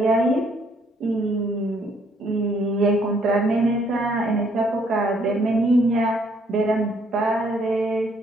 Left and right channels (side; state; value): both; normal; correlation 0.66